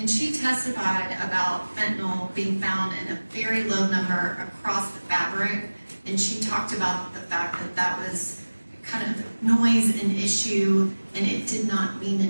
she testified about fentanyl being found in a very low number across the fabric. And she talked about the fact that that was kind of noise an issue and it did not mean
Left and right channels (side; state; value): both; inverted; correlation -1.00